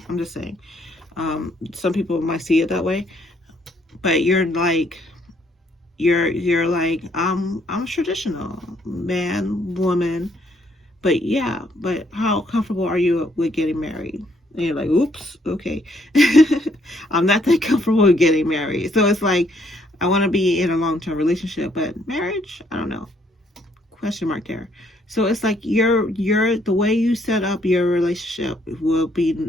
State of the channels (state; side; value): normal; both; correlation 0.69